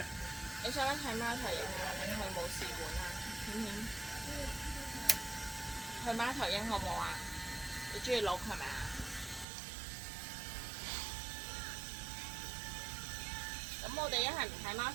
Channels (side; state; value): left; drops out; at 9.5 s